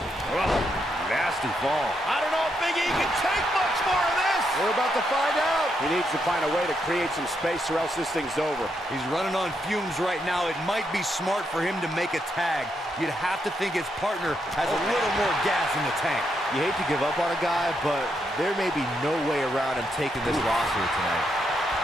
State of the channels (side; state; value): both; normal; correlation 0.80